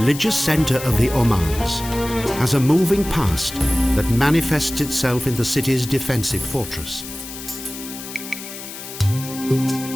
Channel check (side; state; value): left; noise; hiss, 11 dB below the sound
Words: center of the Omans, has a moving past that manifests itself in the city's defensive fortress.